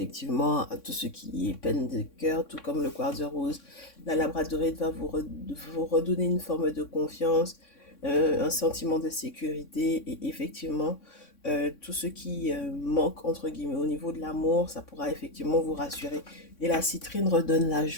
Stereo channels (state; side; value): late; right; 3.6 ms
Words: à tout ce qui est peine de cœur, tout comme le quartz rose. La labradorite va vous redonner une forme de confiance, un sentiment de sécurité et effectivement tout ce qui manque entre guillemets au niveau de l'amour, ça pourra effectivement vous rassurer. Et la citrine redonne la